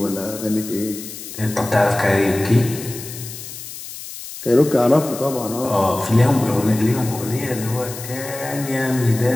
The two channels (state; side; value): noise; left; hiss, 12 dB below the sound